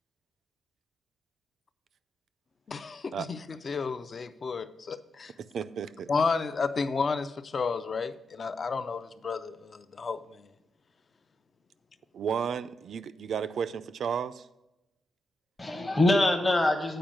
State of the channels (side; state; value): both; normal; correlation 0.86